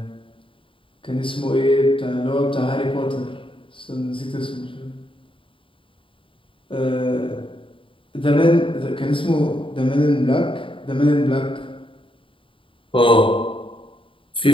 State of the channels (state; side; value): late; right; 0.25 ms